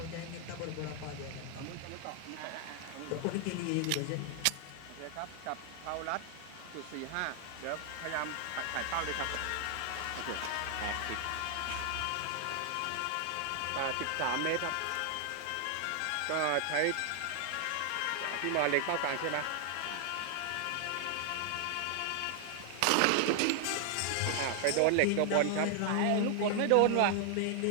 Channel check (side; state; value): both; different; correlation 0.00